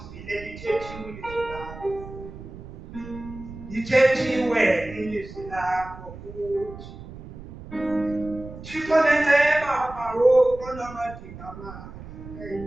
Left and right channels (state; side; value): noise; right; rumble, 14 dB below the sound